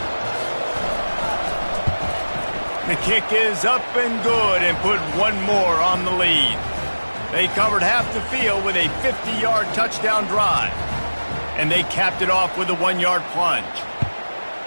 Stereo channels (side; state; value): both; inverted; correlation -1.00